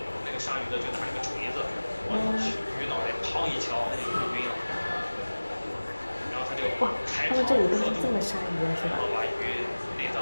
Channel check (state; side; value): inverted; both; correlation -1.00